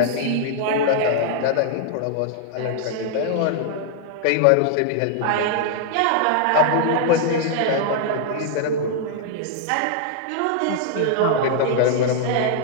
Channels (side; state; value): both; different; correlation -0.01